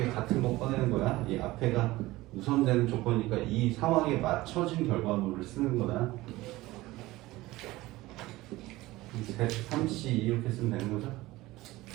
같은 거 꺼내는 거야. 이 앞에가 우선되는 조건이니까 이 상황에 맞춰진 결과물을 쓰는 거다. 3C 이렇게 쓰면 되는 거죠?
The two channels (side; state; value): left; quieter; 18.7 dB